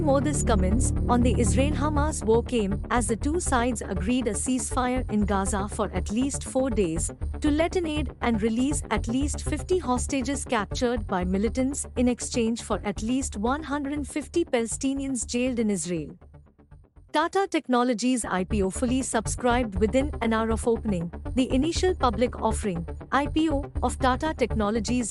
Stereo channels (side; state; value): both; identical; correlation 1.00